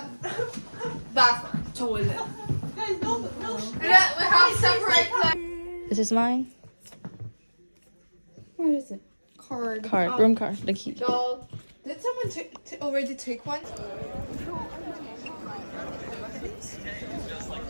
bathroom. Toilet. Guys, no. We have separate This is mine. What is it? Card. Room card, the key. Doll. Did someone already take one?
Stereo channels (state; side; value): inverted; both; correlation -1.00